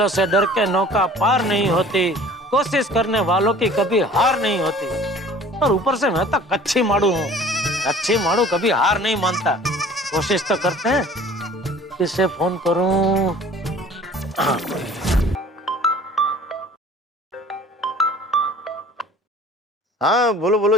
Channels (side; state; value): both; normal; correlation 0.48